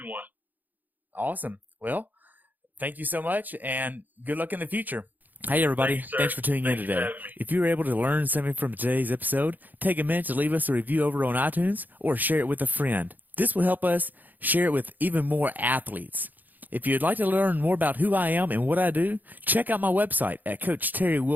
Awesome. Well, thank you so much, and good luck in the future. Hey, everybody. Thanks for tuning in today. If you were able to learn something from today's episode, take a minute to leave us a review over on iTunes or share it with a friend. This will help us share it with even more athletes. If you'd like to learn more about who I am and what I do, check out my website at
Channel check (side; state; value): left; late; 0.085 ms